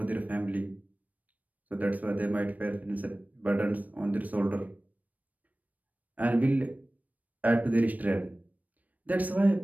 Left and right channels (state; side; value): late; left; 0.076 ms